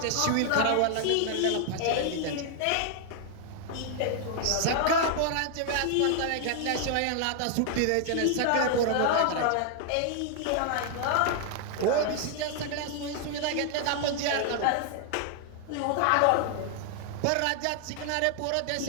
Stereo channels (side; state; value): both; different; correlation 0.00